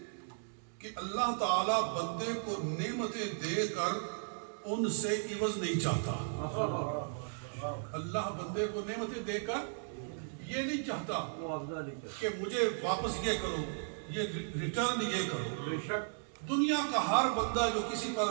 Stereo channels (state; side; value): silent; left; digital silence